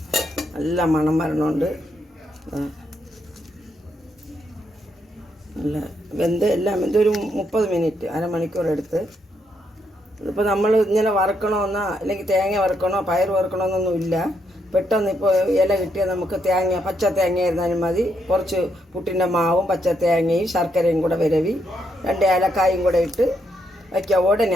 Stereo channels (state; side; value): normal; both; correlation 0.78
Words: നല്ല മണം വരണമുണ്ട്. നല്ല എല്ലാം ഒരു 30 മിനിറ്റ്, അരമണിക്കൂർ എടുത്ത്. ഇതിപ്പോൾ നമ്മൾ ഇങ്ങനെ വറുക്കണമെന്നോ അല്ലെങ്കിൽ തേങ്ങ വറുക്കണോ പയർ വറുക്കണമെന്നൊന്നും ഇല്ല. പെട്ടെന്ന് ഇപ്പോൾ ഇല കിട്ടിയാൽ നമുക്ക് പച്ച തേങ്ങ ഇരുന്നാലും മതി. കുറച്ച് പുട്ടിൻ്റെ മാവും പച്ച തേങ്ങയും ശർക്കരയും കൂടെ വിരവി 2 ഏലക്കായും കൂടെ ഇട്ട് വയ്ക്കുക. ഉടനെ